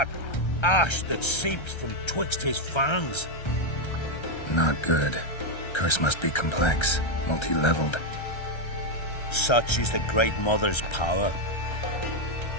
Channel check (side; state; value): right; late; 1.3 ms